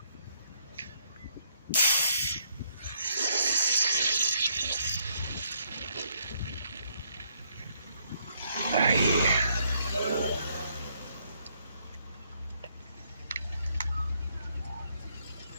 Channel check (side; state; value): both; inverted; correlation -0.71